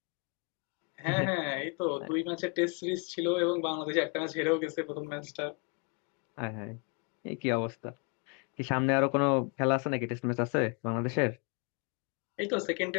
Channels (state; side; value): quieter; right; 33.6 dB